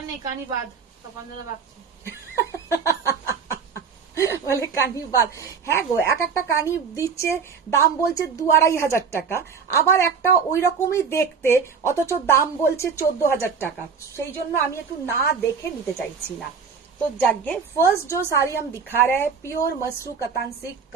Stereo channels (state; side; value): quieter; left; 6.0 dB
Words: নেই, কানি বাদ, তপনদাদা বাঁচছে। বলে কানি বাদ। হ্যাঁ গো, এক একটা কানি দিচ্ছে, দাম বলছে 2-2.5 টাকা, আবার একটা ওই রকমই দেখতে, অথচ দাম বলছে 14,000 টাকা। সেই জন্য আমি একটু না দেখে নিতে চাইছি না। तो जागे फर्स्ट जो साड़ी हम दिखा रहे हैं, pure Masru Katan silk.